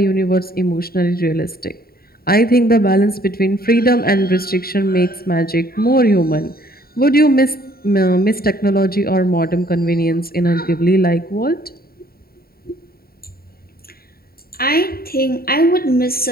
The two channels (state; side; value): late; right; 0.44 ms